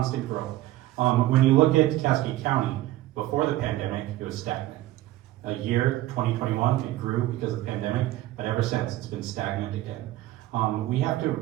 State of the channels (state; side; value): quieter; left; 15.7 dB